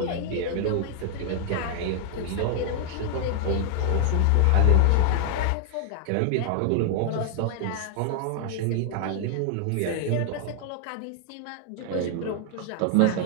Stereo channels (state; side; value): different; both; correlation 0.00